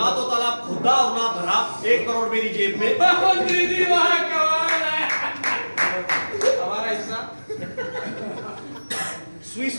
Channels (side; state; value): both; inverted; correlation -1.00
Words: तो तालाब खोदा और ना भरा, 1 करोड़ मेरी जेब में। मंत्री जी वहाँ कमाल है। हमारा हिस्सा स्विस